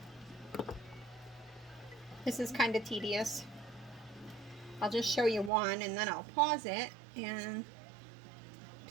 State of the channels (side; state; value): left; drops out; at 5.5 s